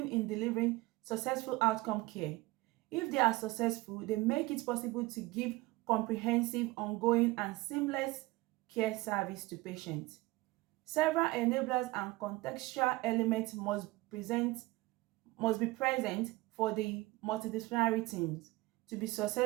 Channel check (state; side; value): quieter; left; 20.7 dB